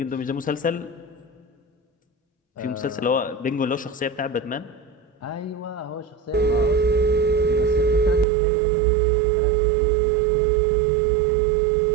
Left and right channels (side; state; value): left; drops out; at 8.2 s